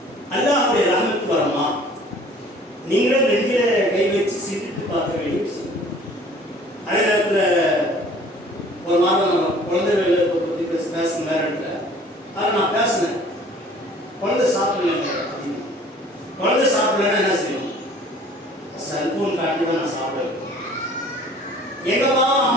அல்லாஹ்வுடைய ரஹ்மத் வருமா? நீங்களும் நெஞ்சில கை வச்சு சிந்தித்து பார்க்க வேண்டிய விஷயம். அதே நேரத்தில் ஒரு மாதம் நம்ம குழந்தைகளை பற்றி பேசணும் வேற இடத்துல. அதை நான் பேசினேன். குழந்தை சாப்பிடல, குழந்தை சாப்பிடலன்னா என்ன செய்யணும்? செல்போன் காட்டி தான் நான் சாப்பிடுவேன். எங்கப்பா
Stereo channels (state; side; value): normal; both; correlation 0.51